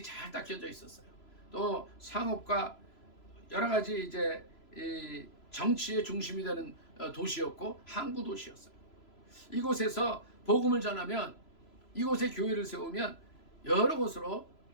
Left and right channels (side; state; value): right; late; 3.0 ms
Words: 잘 닦여져 있었어요. 또 상업과 여러 가지 이제 이 정치의 중심이 되는 도시였고 항구 도시였어요. 이곳에서 복음을 전하면 이곳에 교회를 세우면 여러 곳으로